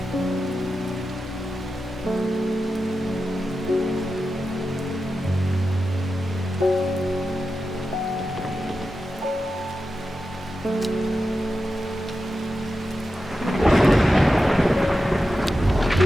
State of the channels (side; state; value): both; normal; correlation 0.91